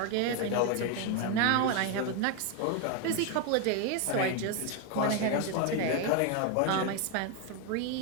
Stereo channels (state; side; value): different; both; correlation 0.01